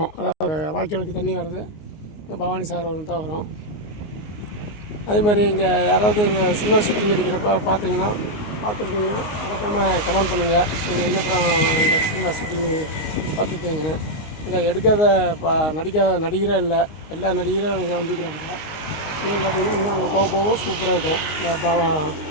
அதாவது வாய்க்காலுக்கு தண்ணி வர்றது இங்கே பவானி சார் வந்து தான் வரும். அதேமாதிரி இங்கே யாராவது சினிமா ஷூட்டிங் எடுக்கிறப்ப பார்த்துருக்கீங்கன்னா மறக்காமல் கமெண்ட் பண்ணுங்கள். நீங்கள் என்ன படம் இந்த சினிமா ஷூட்டிங்கு பார்த்துருக்கீங்கன்னு. இதை எடுக்காத நடிக்காத நடிகரே இல்லை, எல்லா நடிகரும் இங்கே வந்துக்கிறாங்க. இன்னும் பார்த்திங்கன்னா இன்னும் அங்கே போக சூப்பராக இருக்கும். இந்த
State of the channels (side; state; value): right; late; 20 ms